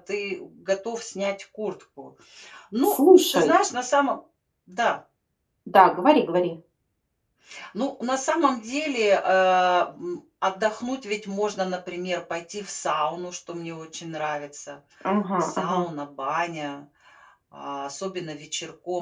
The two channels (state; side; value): identical; both; correlation 1.00